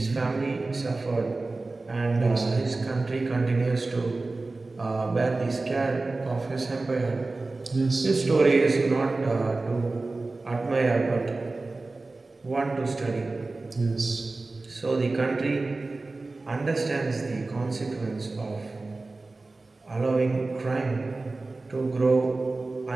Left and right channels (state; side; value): quieter; left; 3.4 dB